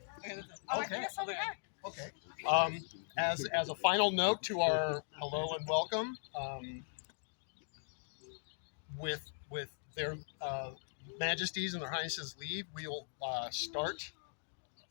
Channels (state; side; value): silent; right; digital silence